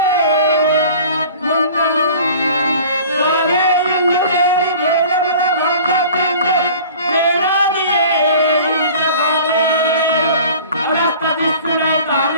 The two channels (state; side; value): inverted; both; correlation -0.44